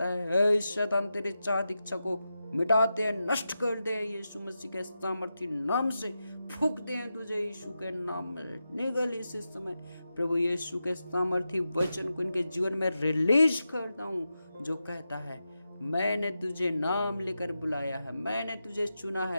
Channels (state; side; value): inverted; both; correlation -0.90